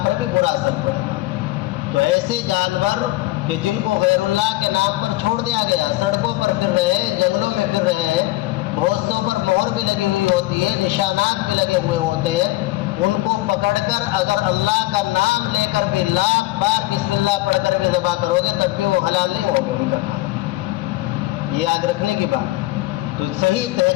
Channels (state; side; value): quieter; right; 18.2 dB